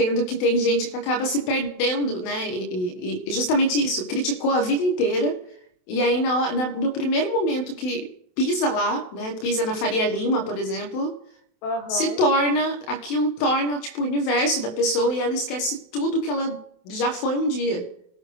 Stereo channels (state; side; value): late; right; 28 ms